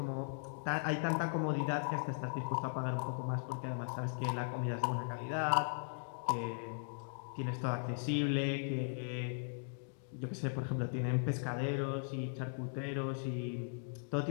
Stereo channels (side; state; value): right; silent; digital silence